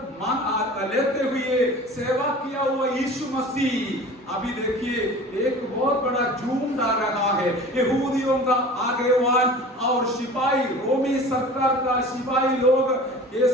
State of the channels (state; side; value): normal; both; correlation 0.40